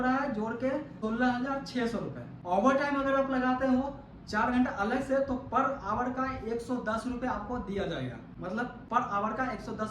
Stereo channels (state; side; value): identical; both; correlation 1.00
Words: है जोड़ के 16,600 रुपए। ओवर टाइम अगर आप लगाते हो 4 घंटा अलग से, तो पर आवर का 110 रुपए आपको दिया जाएगा, मतलब पर आवर का